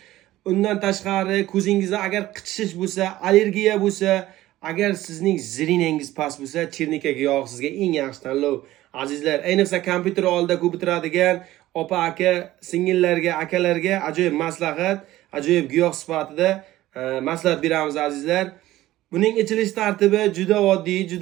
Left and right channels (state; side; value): quieter; left; 15.7 dB